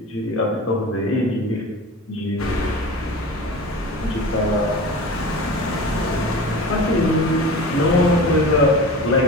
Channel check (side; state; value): both; normal; correlation 0.34